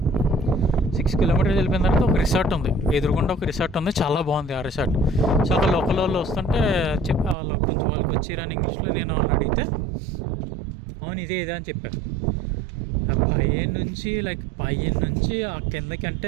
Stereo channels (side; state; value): left; drops out; at 7.4 s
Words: 6 కిలోమీటర్స్ వెళ్ళిపోయిన తర్వాత ఒక రిసార్ట్ ఉంది, ఎదురుగుండా ఒక రిసార్ట్ ఉంది, చాలా బాగుంది ఆ రిసార్ట్. సో అక్కడ లోకల్ వాళ్ళు వస్తుంటే వాళ్ళకి వచ్చిరాని ఇంగ్లీష్లో నేను వాళ్ళని అడిగితే అవును ఇదే అని చెప్పారు. పైన నుంచి ఆ కిందకి